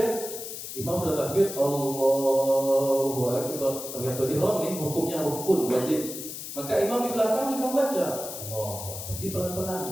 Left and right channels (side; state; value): left; noise; hiss, 9 dB below the sound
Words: imam sudah takbir, Allahu Akbar. Takbiratul ihram ini hukumnya rukun wajib. Maka imam di belakang juga baca Allah. Jadi pelan-pelan,